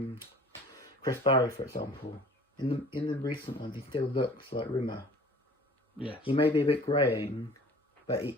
Chris Barry, for example. In the recent ones, he still looks like Rimmer. Yes. He may be a bit greying, but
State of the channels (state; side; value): normal; both; correlation 0.48